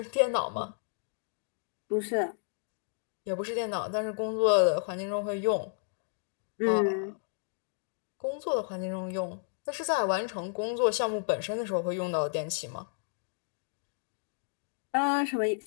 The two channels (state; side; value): silent; right; digital silence